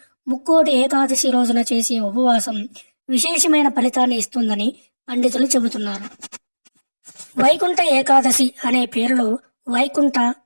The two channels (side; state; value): both; inverted; correlation -1.00